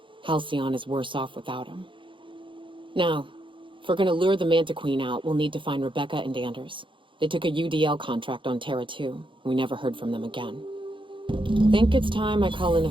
Halcyon is worse off without him. Now, if we're gonna lure the Manta Queen out, we'll need to find Rebecca and Anders. They took a UDL contract on Terra 2. We never heard from them again. Think it's time I call in a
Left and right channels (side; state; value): left; late; 0.24 ms